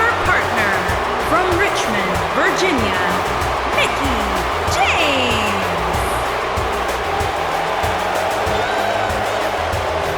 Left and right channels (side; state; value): both; identical; correlation 1.00